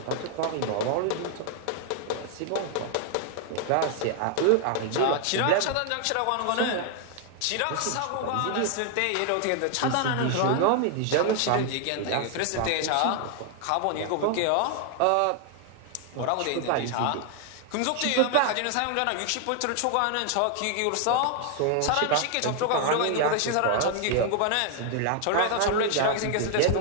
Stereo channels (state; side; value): different; both; correlation 0.00